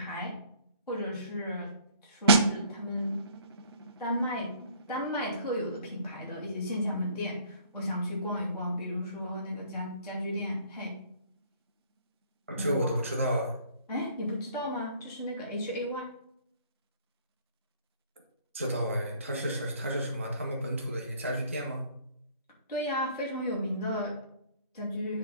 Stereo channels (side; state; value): both; inverted; correlation -0.57